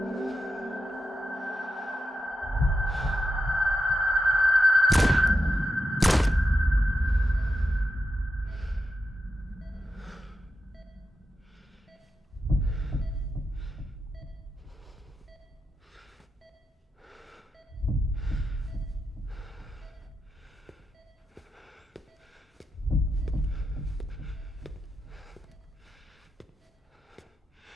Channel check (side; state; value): both; normal; correlation 0.87